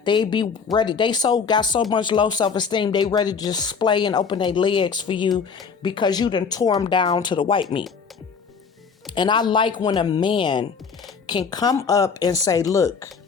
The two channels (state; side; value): quieter; right; 5.8 dB